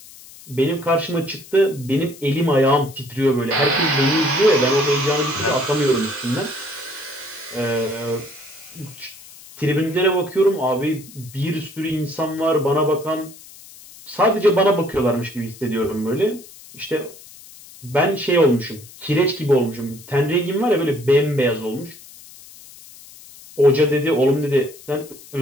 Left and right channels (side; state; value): left; noise; hiss, 20 dB below the sound